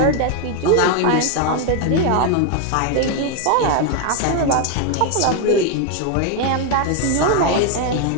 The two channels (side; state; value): both; different; correlation 0.01